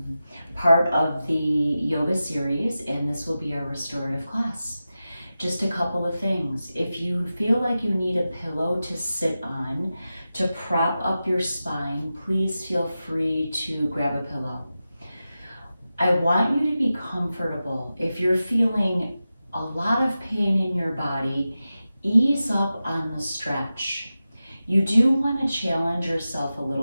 part of the yoga series, and this will be our restorative class. Just a couple of things. If you feel like you need a pillow to sit on to prop up your spine, please feel free to grab a pillow. I want you to be comfortable. If you're feeling a lot of pain in your body, ease up on the stretch. You do want to challenge yourself a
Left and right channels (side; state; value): both; inverted; correlation -0.93